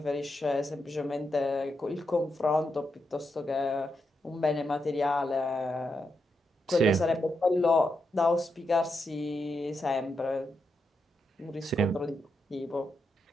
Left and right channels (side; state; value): both; normal; correlation 0.84